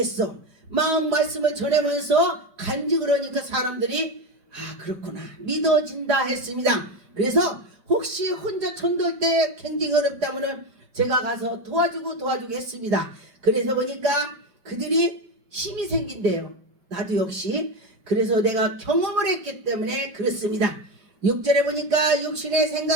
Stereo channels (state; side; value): late; left; 5.1 ms